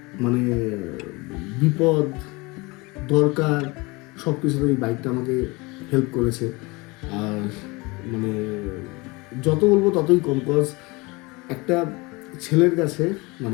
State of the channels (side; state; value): right; quieter; 25.0 dB